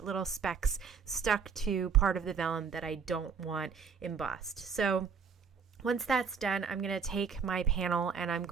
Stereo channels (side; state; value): left; quieter; 6.1 dB